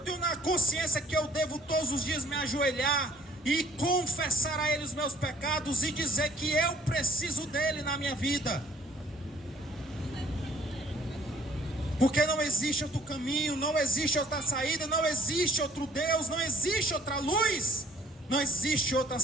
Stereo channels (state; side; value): normal; both; correlation 0.59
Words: na consciência que eu devo todos os dias me ajoelhar e confessar a Ele os meus pecados e dizer que eu preciso dEle na minha vida. Porque não existe outro caminho, não existe outra saída, não existe outro Deus, não existe outra luz, não existe outra